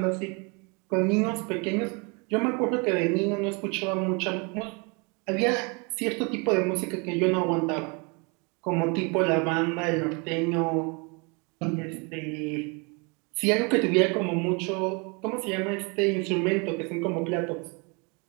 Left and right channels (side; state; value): left; quieter; 31.5 dB